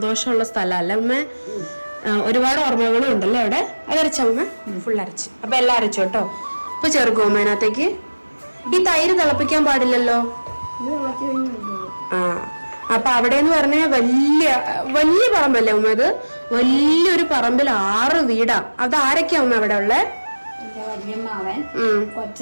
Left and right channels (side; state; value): both; inverted; correlation -1.00